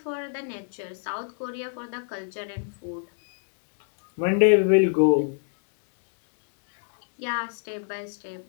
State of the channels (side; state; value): right; silent; digital silence